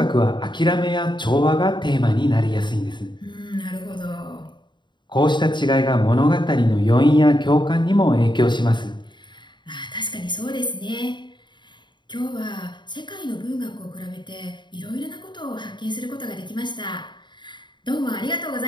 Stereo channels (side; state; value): right; late; 0.22 ms